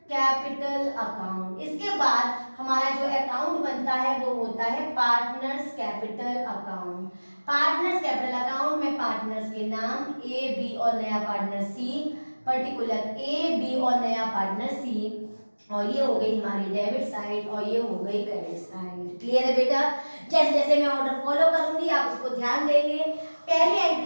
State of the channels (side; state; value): both; inverted; correlation -1.00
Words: capital account. इसके बाद हमारा जो अकाउंट बनता है वो होता है partners capital account. Partners capital account में पार्टनर्स के नाम ए, बी और नया पार्टनर सी, पर्टिकुलर ए, बी और नया पार्टनर सी, और ये हो गई हमारी डेबिट साइड और ये हो गई क्रेडिट साइड। क्लियर है बेटा, जैसे जैसे मैं ऑर्डर फॉलो करूंगी आप उसको ध्यान देंगे। पहली